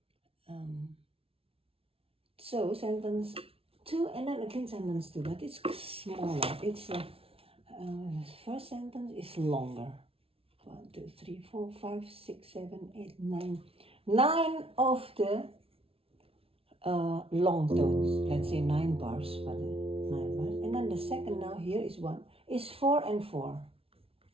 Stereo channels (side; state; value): left; late; 0.27 ms